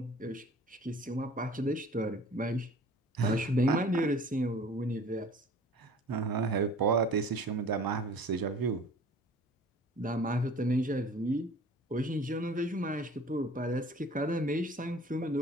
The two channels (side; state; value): both; normal; correlation 0.47